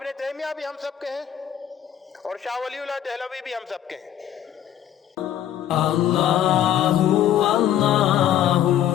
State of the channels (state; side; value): quieter; right; 10.7 dB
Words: तैमिया भी हम सब के हैं और शाह वलीउल्लाह दहलवी भी हम सब के हैं। अल्लाहु अल्लाहु